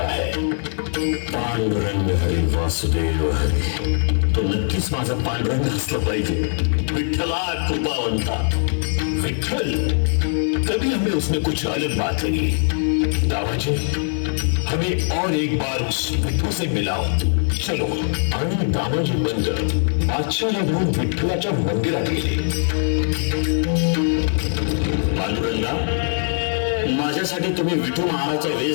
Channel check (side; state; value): right; silent; 65 dB below the other